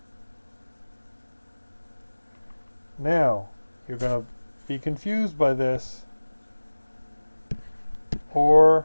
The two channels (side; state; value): both; inverted; correlation -1.00